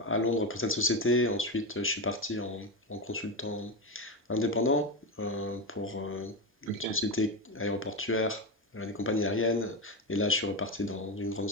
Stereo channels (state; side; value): normal; both; correlation 0.14